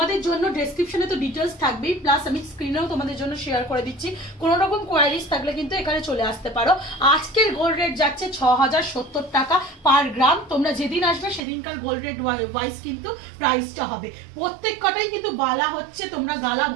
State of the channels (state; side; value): drops out; left; at 11.4 s